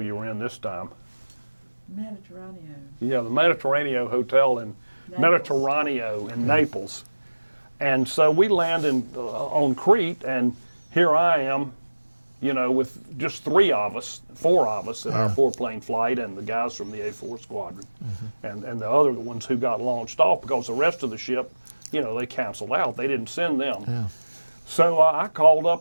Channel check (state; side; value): inverted; both; correlation -1.00